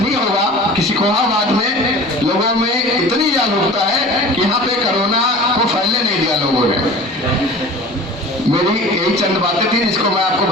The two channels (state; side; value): normal; both; correlation 0.40